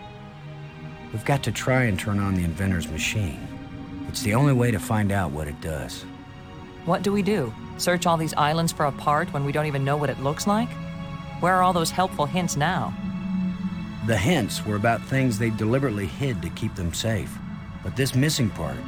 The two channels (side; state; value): both; identical; correlation 1.00